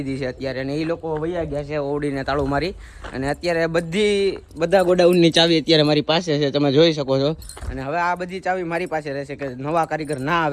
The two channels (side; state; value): both; identical; correlation 1.00